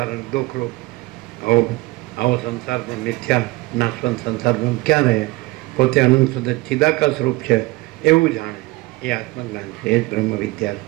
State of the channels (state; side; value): quieter; left; 21.8 dB